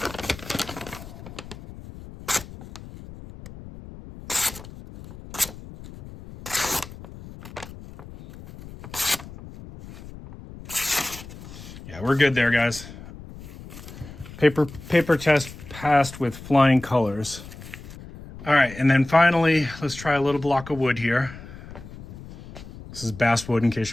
Yeah, we're good there, guys. Paper test passed with flying colors. All right, and then finally, let's try a little block of wood here. This is basswood, in case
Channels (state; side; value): noise; left; rumble, 15 dB below the sound